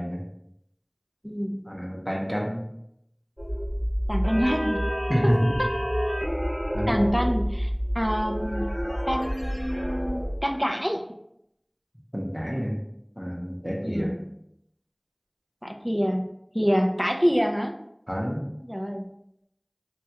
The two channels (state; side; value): identical; both; correlation 1.00